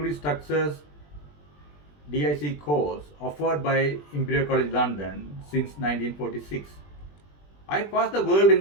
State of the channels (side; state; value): right; late; 20 ms